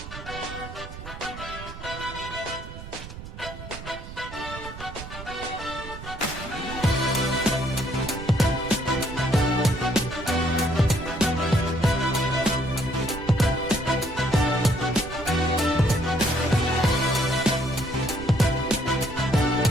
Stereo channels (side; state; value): right; noise; rumble, 12 dB below the sound